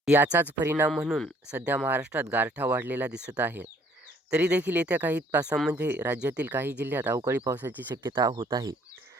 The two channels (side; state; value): both; normal; correlation 0.61